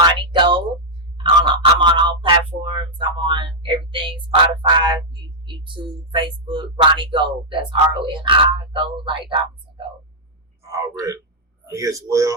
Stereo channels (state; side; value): normal; both; correlation -0.05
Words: Gold. I'm on all platforms. I'm on everything: Spotify, YouTube, Facebook. Ronnie Gold. That's RONI Gold, like diamonds and gold. Already. Me as